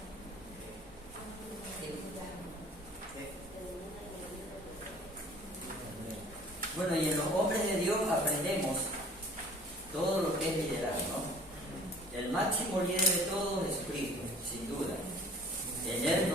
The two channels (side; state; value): both; normal; correlation 0.51